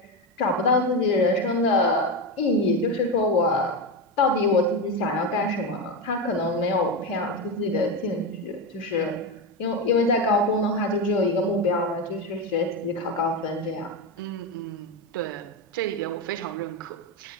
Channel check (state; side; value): normal; both; correlation 0.14